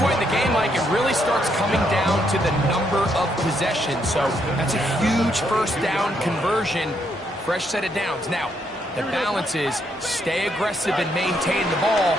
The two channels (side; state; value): both; normal; correlation 0.75